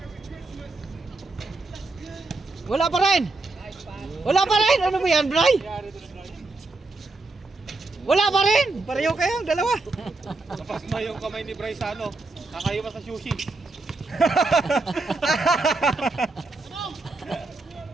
Wala pa rin. Wala pa rin. Ano ba yan, Bray? Wala pa rin. Pareho kayong dalawa. Tapos na yung kamay ni Bryce sa ano, nakaiwas sa sushi.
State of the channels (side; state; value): left; quieter; 3.3 dB